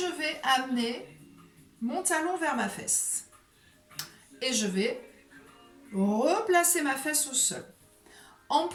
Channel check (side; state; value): both; identical; correlation 1.00